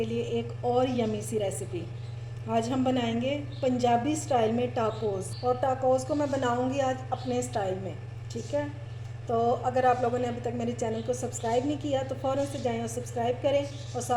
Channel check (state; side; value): identical; both; correlation 1.00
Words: लिए एक और यमी सी रेसिपी। आज हम बनाएंगे पंजाबी स्टाइल में टाकोस, और टाकोस को मैं बनाऊंगी आज अपने स्टाइल में। ठीक है, तो अगर आप लोगों ने अभी तक मेरे चैनल को सब्सक्राइब नहीं किया तो फ़ौरन से जाएं और सब्सक्राइब करें और